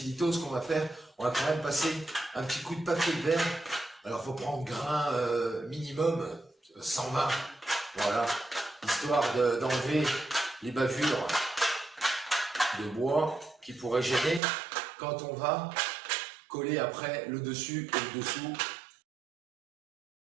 litos, ce qu'on va faire, on va quand même passer un petit coup de papier de verre. Alors, il faut prendre grain minimum 120, voilà, histoire d'enlever les bavures de bois qui pourraient gêner quand on va coller après le dessus et le dessous.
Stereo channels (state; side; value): drops out; left; at 14.4 s